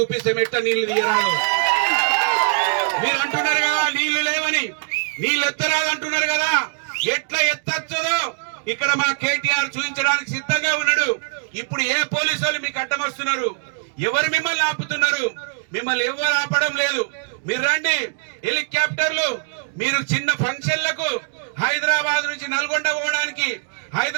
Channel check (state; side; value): silent; left; digital silence